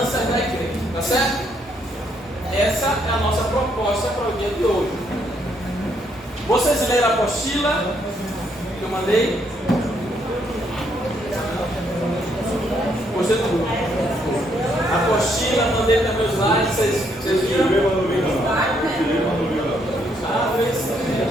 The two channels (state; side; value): normal; both; correlation 0.72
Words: da igreja, tá certo? Essa é a nossa proposta para o dia de hoje. Vocês leram a apostila que eu mandei? Gostei tudo. A apostila, mandei também os slides, vocês viram?